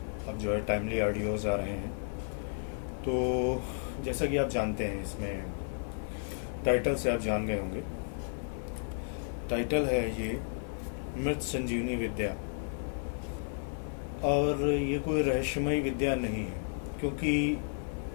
अब जो है टाइमली ऑडियोज़ आ रहे हैं। तो जैसा कि आप जानते हैं, इसमें टाइटल से आप जान गए होंगे। टाइटल है ये मृत संजीवनी विद्या। और ये कोई रहस्यमय विद्या नहीं है, क्योंकि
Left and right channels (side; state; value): right; silent; 55 dB below the other